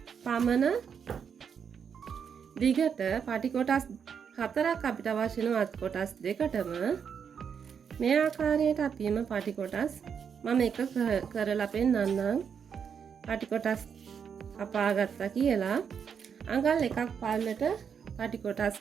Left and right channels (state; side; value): quieter; left; 7.1 dB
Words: පමණ දිගට පටි කොටස් 4ක් අපිට අවශ්‍ය වෙන අත් කොටස් දෙකටම මේ ආකාරයට අපිම පටි කොටස් මම එක කරලා පෙන්නන්නම්. පටි කොටස් කපා ගත්තා කියලා අඟල් එකක් පල්ලට පටි කොටස්